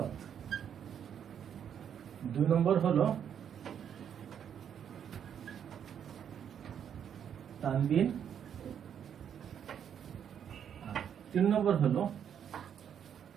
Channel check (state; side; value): quieter; left; 8.6 dB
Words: 2 নম্বর হলো তানবিন, 3 নম্বর হলো